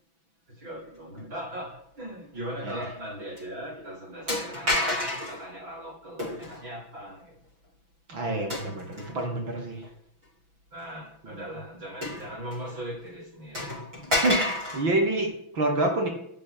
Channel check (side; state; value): left; late; 6.0 ms